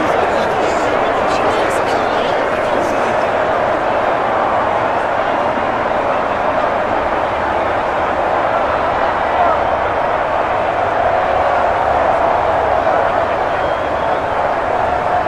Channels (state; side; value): identical; both; correlation 1.00